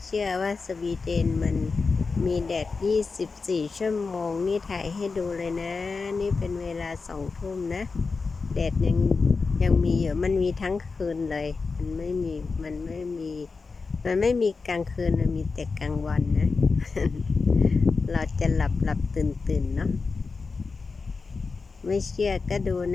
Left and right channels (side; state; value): right; quieter; 4.4 dB